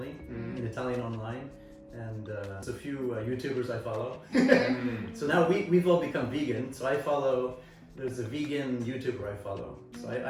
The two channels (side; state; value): both; identical; correlation 1.00